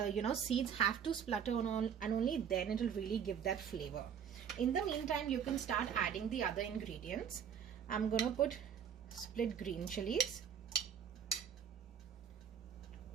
have to splutter and only then it will really give that flavor. In the meantime, you can start adding the other ingredients. I'm gonna put split green chilies.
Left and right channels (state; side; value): quieter; left; 8.1 dB